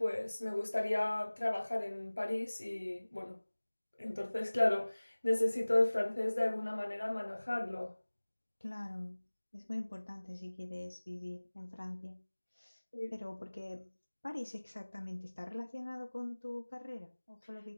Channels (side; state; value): both; inverted; correlation -1.00